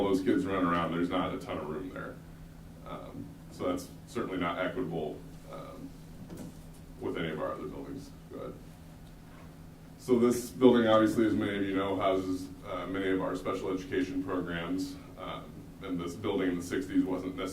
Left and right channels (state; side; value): identical; both; correlation 1.00